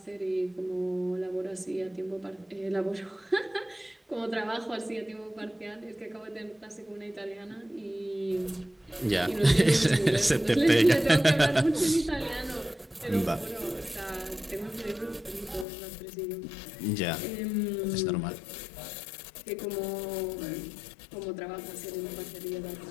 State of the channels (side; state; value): right; drops out; at 15.7 s